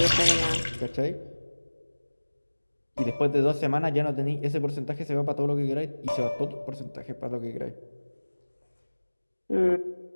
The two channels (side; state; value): both; inverted; correlation -1.00